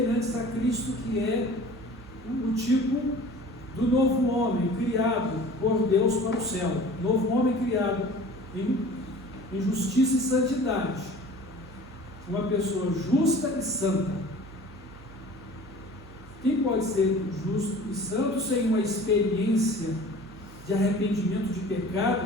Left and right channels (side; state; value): right; noise; hum, 19 dB below the sound